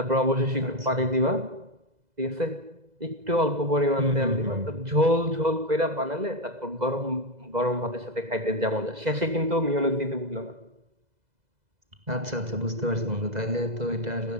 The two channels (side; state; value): left; late; 2.0 ms